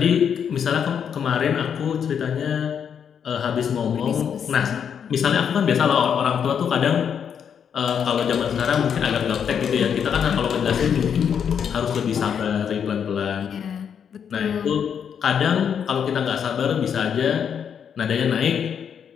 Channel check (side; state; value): right; quieter; 7.8 dB